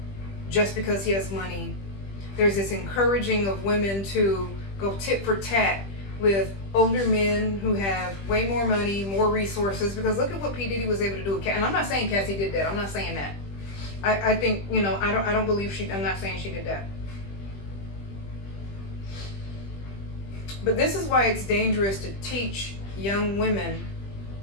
just because he has money. There's this encouraging of women to go tit for tat with older men who have way more money, more resources, because look at what P. Diddy was able to do with Cassie. And I'm not saying Cassie did that. I'm not saying that. I think, you know, I don't believe I'm not saying she did that. But this is why it's dangerous to teach young women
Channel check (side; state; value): right; late; 20 ms